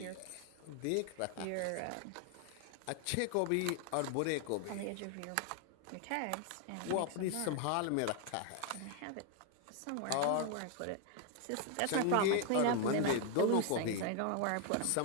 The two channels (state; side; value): different; both; correlation 0.00